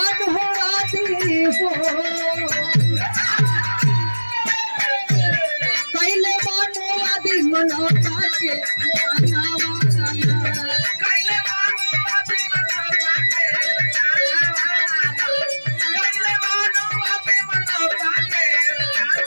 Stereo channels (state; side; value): inverted; both; correlation -1.00